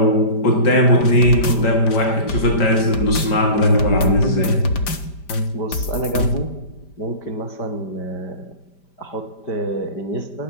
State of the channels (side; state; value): right; late; 5.1 ms